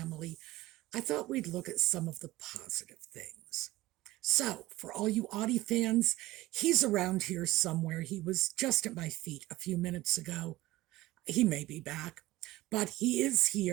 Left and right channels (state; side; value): quieter; left; 17.9 dB